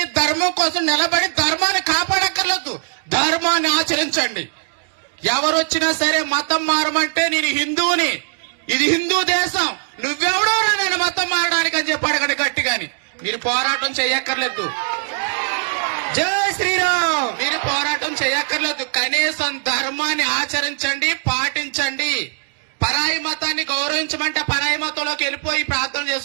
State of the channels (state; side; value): silent; left; digital silence